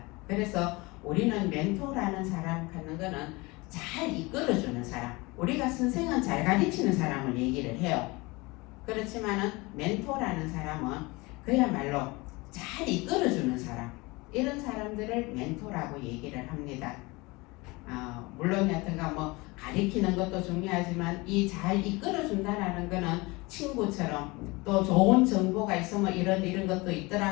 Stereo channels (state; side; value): quieter; right; 24.2 dB